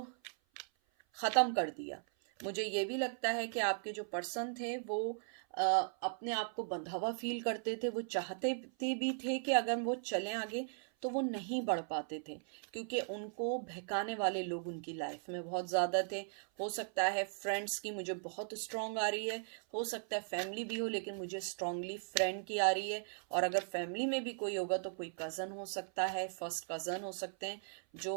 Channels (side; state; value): left; silent; 52 dB below the other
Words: ख़त्म कर दिया। मुझे ये भी लगता है कि आपके जो पर्सन थे वो अपने आप को बंधा हुआ फील करते थे। वो चाहते भी थे कि अगर वो चलें आगे तो वो नहीं बढ़ पाते थे, क्योंकि उनको बहकाने वाले लोग उनकी लाइफ में बहुत ज़्यादा थे। हो सकता है फ्रेंड्स की मुझे बहुत स्ट्रांग आ रही है, हो सकता है फैमिली भी हो लेकिन मुझे स्ट्रांगली फ्रेंड की आ रही है, और अगर फैमिली में भी कोई होगा तो कोई कज़न हो सकता है, फर्स्ट कज़न हो सकते हैं जो